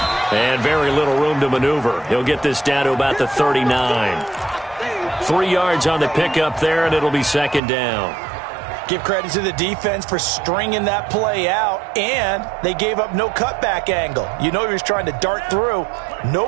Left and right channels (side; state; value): left; drops out; at 7.6 s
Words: And very little room to maneuver. He'll get this down to about the 39. 3 yards on the pickup there, and it'll be second down. Give credit to the defense for stringing that play out, and they gave up no cutback angle. You know he was trying to dart through. No